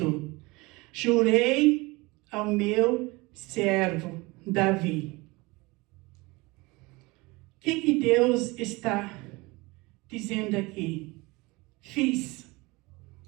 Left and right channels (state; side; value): quieter; left; 23.8 dB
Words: jurei ao meu servo Davi. O que Deus está dizendo aqui? Fiz.